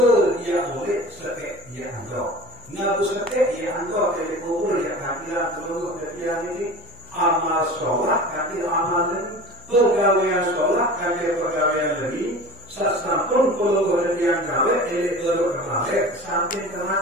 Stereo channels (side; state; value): left; noise; hum, 24 dB below the sound